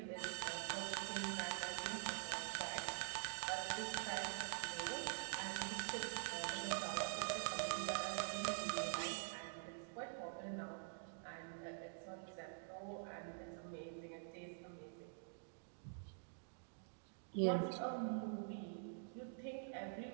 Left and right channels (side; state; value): left; silent; digital silence